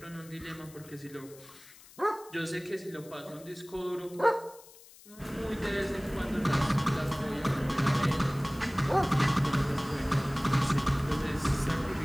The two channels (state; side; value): noise; left; hiss, 22 dB below the sound